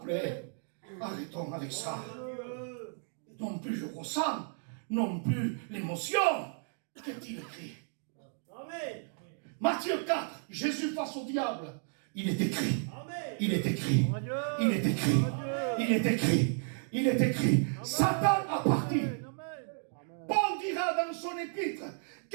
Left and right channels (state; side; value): silent; left; 56 dB below the other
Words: Arrêtons avec ça. Non plus je ressens, non plus l'émotion. Qu'est-il écrit? Amen. Matthieu 4, Jésus face au diable. Il est écrit. Amen. Il est écrit. Il est écrit. Il est écrit. Il est écrit. Satan a parti. Paul dira dans son épître,